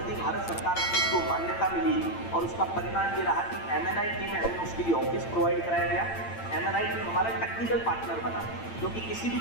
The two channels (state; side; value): late; right; 8.9 ms